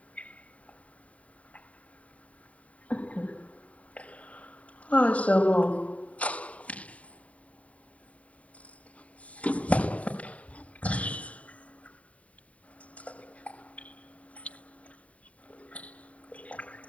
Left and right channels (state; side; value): late; right; 0.067 ms